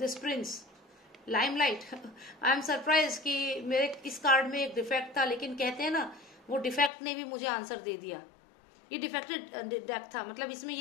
Prince limelight. I am surprise कि मेरे इस कार्ड में एक डिफेक्ट था, लेकिन कहते हैं ना वो डिफेक्ट ने भी मुझे आंसर दे दिया। ये डिफेक्टेड डेक था, मतलब इसमें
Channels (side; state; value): right; drops out; at 6.9 s